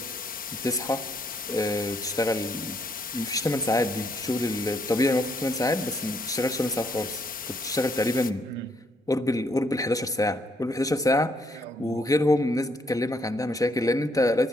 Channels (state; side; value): normal; both; correlation 0.72